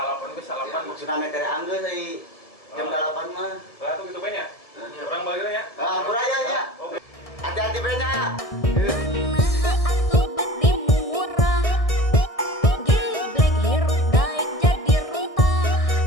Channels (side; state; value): right; late; 1.6 ms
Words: ge Ya, salapan. maksudna mah dari anggeus euy. Jam 8 mah. Lah tuh gitu banyak. Ya, Orang balik ya. Ah, kuraya ya. Oke. Hati-hati brenya. Nah atuh bet dimurah. Geblek hirup daek jadi runtah.